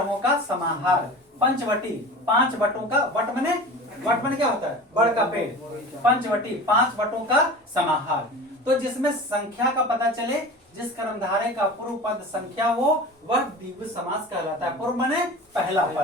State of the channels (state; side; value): normal; both; correlation 0.35